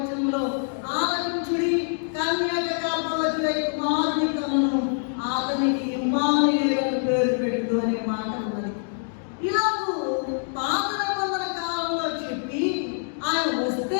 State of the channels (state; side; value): silent; right; digital silence